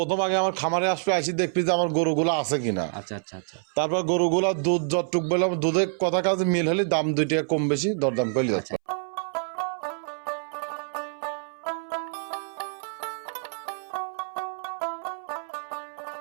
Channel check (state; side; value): silent; left; 60 dB below the other